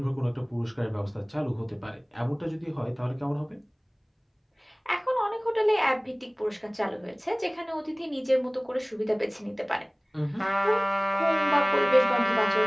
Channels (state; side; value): identical; both; correlation 1.00